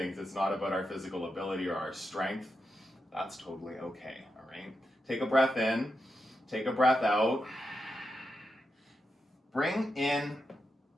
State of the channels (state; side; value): normal; both; correlation 0.87